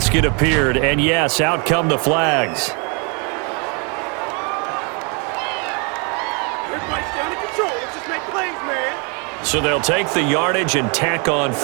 it appeared. And yes, out come the flags. Everybody's down in control. Let's just make plays, man. So they'll take the yardage and tack on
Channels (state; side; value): quieter; left; 34.0 dB